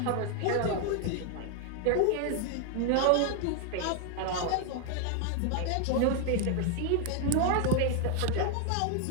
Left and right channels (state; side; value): different; both; correlation 0.00